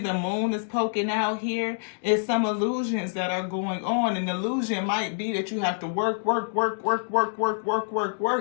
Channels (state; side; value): silent; right; digital silence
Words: the moon is poking out here. It's some illusions that are going on. An illusion might be that you have to work,